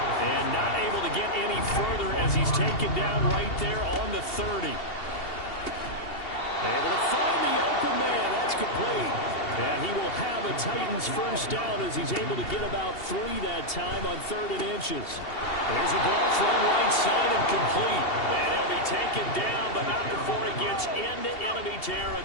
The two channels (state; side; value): late; right; 2.7 ms